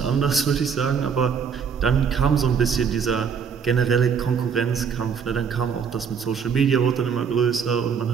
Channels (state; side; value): quieter; left; 6.6 dB